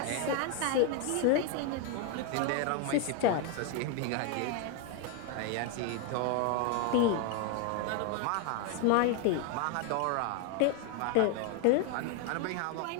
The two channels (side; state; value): both; different; correlation 0.01